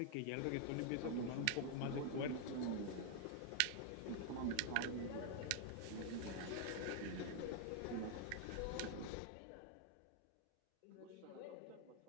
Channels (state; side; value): different; both; correlation 0.00